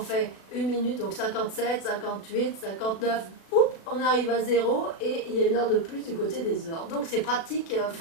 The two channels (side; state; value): right; late; 36 ms